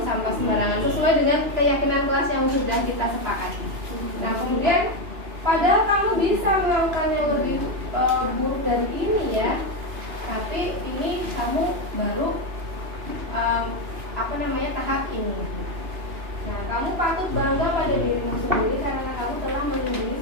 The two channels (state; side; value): late; left; 2.9 ms